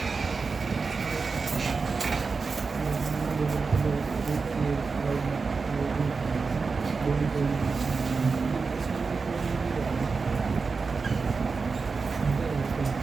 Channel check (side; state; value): left; quieter; 4.6 dB